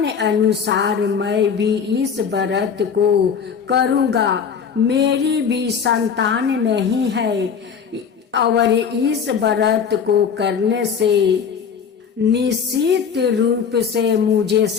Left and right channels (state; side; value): quieter; right; 6.8 dB